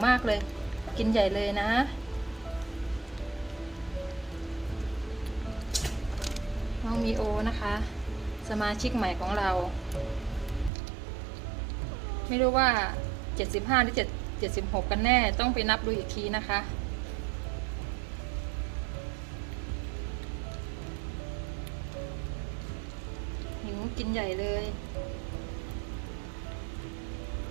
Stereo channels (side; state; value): left; drops out; at 10.7 s